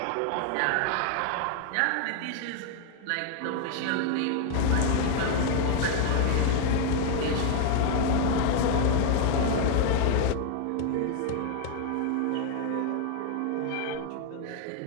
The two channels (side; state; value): both; different; correlation 0.00